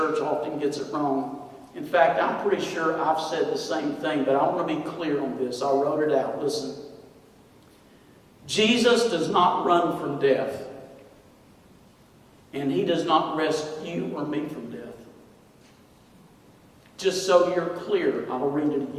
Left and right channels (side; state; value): both; identical; correlation 1.00